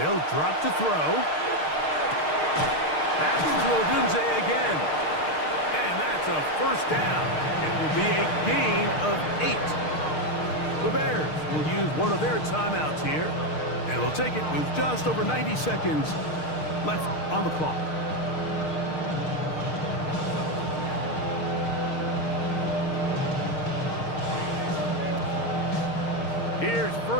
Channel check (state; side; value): late; right; 6.5 ms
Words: drop to throw. That's to Odunze again. And that's a 1st down. It will be a gain of 8. The Bears will use one of their timeouts here, and will take it with just over 90 seconds left on the clock. Here's